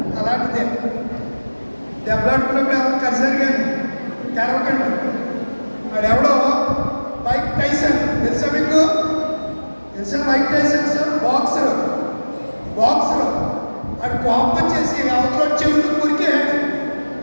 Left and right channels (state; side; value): inverted; both; correlation -1.00